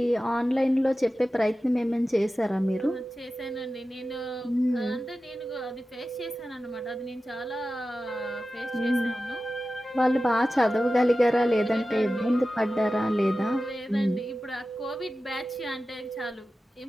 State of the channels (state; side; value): normal; both; correlation 0.94